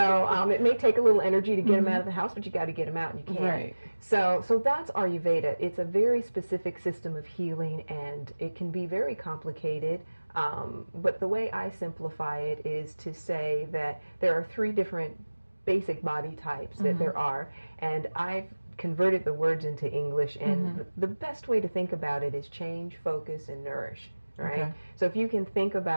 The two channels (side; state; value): both; inverted; correlation -1.00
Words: it may take a little energy to get them out of the house, but you got to get them out, and you can. Right. So that's Ayurveda. It's a very specific system of healing, and it can be very complicated. But the way I simplify it is to say that there are 3 different basic body types that there are, and I've converted the words into English, and the best way to think about it is change, focus, and nourish. Right? Okay. So if you can think